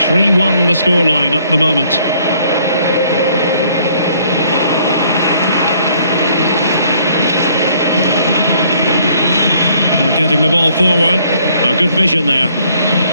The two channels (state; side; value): inverted; both; correlation -0.63